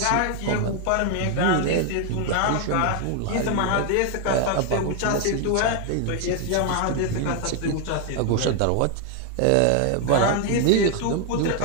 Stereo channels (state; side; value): different; both; correlation 0.01